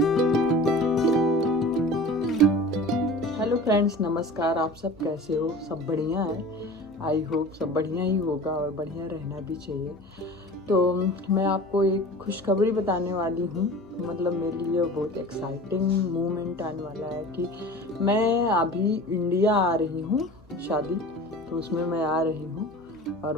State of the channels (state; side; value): noise; left; hum, 29 dB below the sound